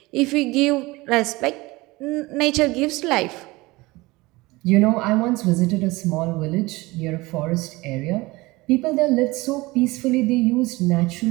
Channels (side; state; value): left; quieter; 21.6 dB